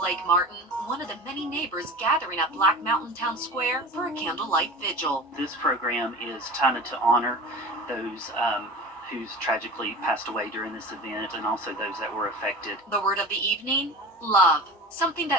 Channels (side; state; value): both; normal; correlation 0.35